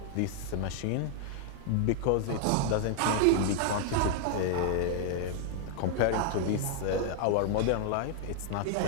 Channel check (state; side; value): different; both; correlation 0.00